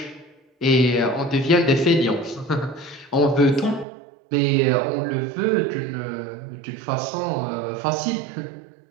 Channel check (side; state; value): left; drops out; at 3.9 s